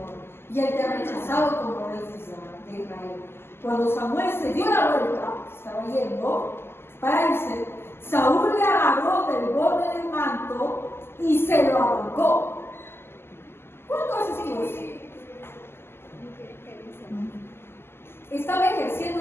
Y él te ha rechazado como rey de Israel. Cuando Samuel se dio la vuelta, estaba yendo para irse, Saúl le agarró del borde del manto y se lo arrancó. ¿Cuándo haces eso? Estaba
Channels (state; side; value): late; right; 0.12 ms